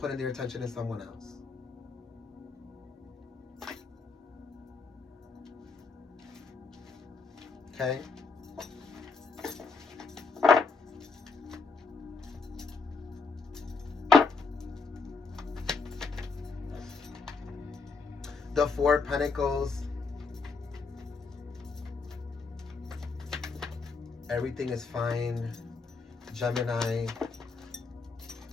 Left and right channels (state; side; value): quieter; right; 4.4 dB